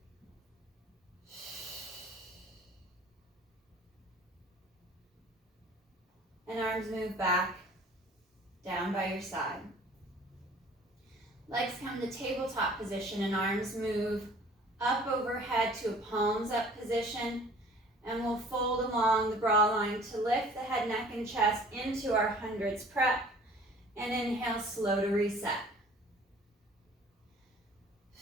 And arms move back, down by your side. Legs come to tabletop position and arms move up overhead to a palms up position. And we'll fold along the bra line to lift the head, neck, and chest into our hundreds prep. And inhale, slow to reset.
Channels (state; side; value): normal; both; correlation 0.51